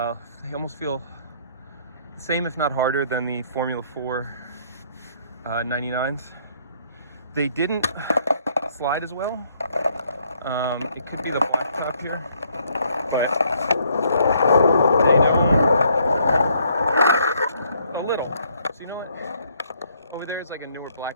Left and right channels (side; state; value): both; inverted; correlation -0.67